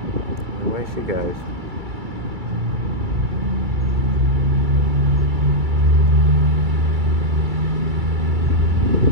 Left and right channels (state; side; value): late; left; 2.3 ms